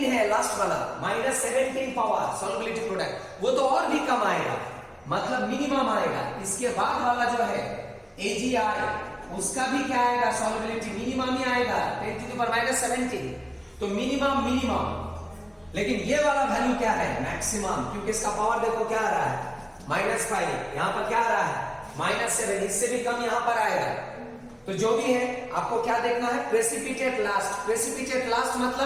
है लास्ट वाला, -17 पावर सॉल्युबिलिटी प्रोडक्ट, वो तो और भी कम आएगा, मतलब मिनिमम आएगा। इसके बाद वाला जो है AgI, उसका भी क्या आएगा? सॉल्युबिलिटी मिनिमम ही आएगा, 10 टू द पावर -17। तो मिनिमम। लेकिन ये वाला वैल्यू क्या है? मैक्सिमम, क्योंकि इसका पावर देखो क्या आ रहा है? -5। यहां पर क्या आ रहा है? -7। इससे भी कम यहां पर आएगा। तो जो भी है आपको क्या देखना है? Precipitate last. प्रेसिपिटेट लास्ट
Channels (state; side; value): identical; both; correlation 1.00